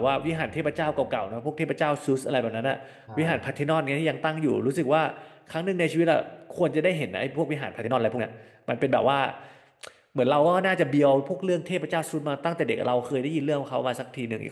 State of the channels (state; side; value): identical; both; correlation 1.00